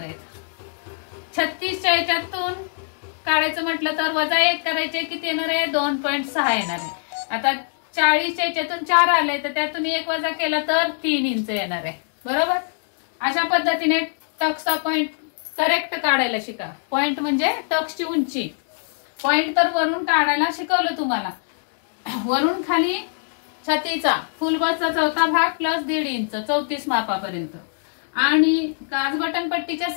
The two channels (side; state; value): right; silent; digital silence